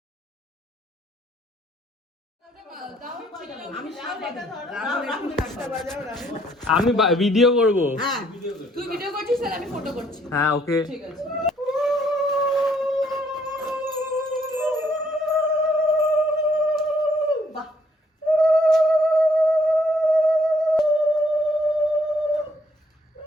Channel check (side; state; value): both; normal; correlation 0.67